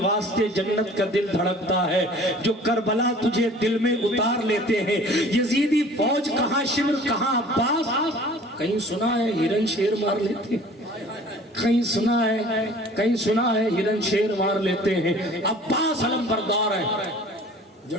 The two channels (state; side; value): normal; both; correlation 0.48